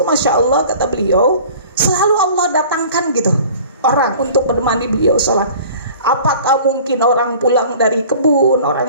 Masya Allah, kata beliau, selalu Allah datangkan gitu orang untuk menemani beliau sholat. Apakah mungkin orang pulang dari kebun,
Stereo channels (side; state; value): both; inverted; correlation -0.46